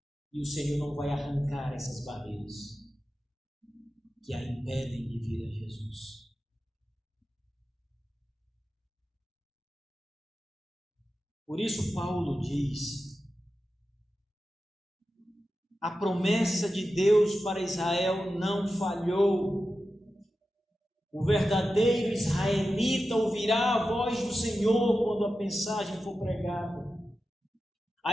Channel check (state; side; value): normal; both; correlation 0.92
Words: E o Senhor não vai arrancar essas barreiras que a impedem de vir a Jesus. Por isso Paulo diz: a promessa de Deus para Israel não falhou. O verdadeiro israelita ouvirá a voz do Senhor quando a mensagem for pregada.